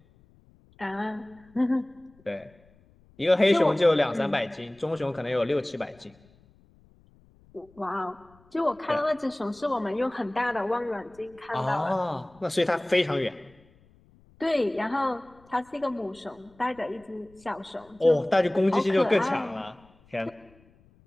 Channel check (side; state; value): left; noise; rumble, 29 dB below the sound